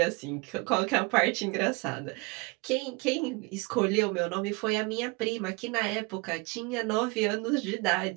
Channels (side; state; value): left; quieter; 27.2 dB